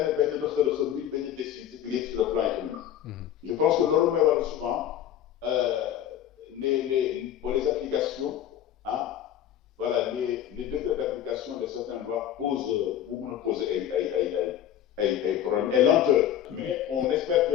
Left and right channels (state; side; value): quieter; right; 10.8 dB